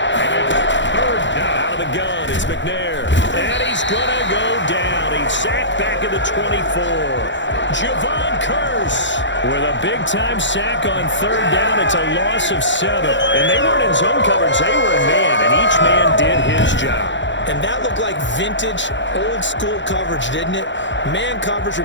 And it's third down. Out of the gun, it's McNair. And he's going to go down. He's sacked back at the 24. Javon Curse with a big-time sack on third down. It's a loss of 7. And they weren't in zone coverage. They were in man, and each man did his job. And that looked like vintage, old-school coverage, didn't it? Man coverage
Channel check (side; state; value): right; late; 0.54 ms